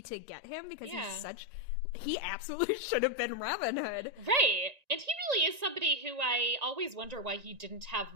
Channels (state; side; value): late; left; 1.9 ms